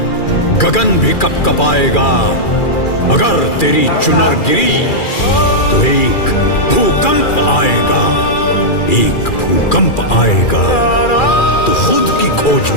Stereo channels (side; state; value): right; late; 2.4 ms